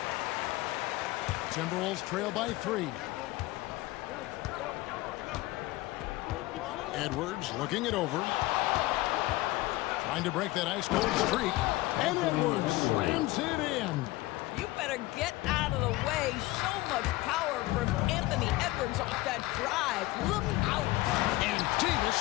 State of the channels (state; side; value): quieter; right; 19.1 dB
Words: Timberwolves trail by 3. Edwards looking it over. Trying to break that ice cold streak. And Edwards slams it in. You better get out of the way. So much power from Anthony Edwards off that drive. Look out. And